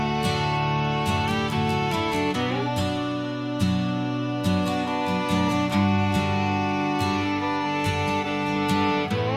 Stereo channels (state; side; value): identical; both; correlation 1.00